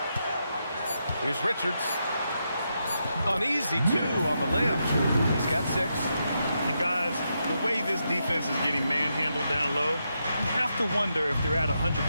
Here's Richards. An easy 2 on the layup. He's got 6. And guys, the way this defense is getting manhandled down low, you have to wonder if they're at 100%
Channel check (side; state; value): both; inverted; correlation -0.83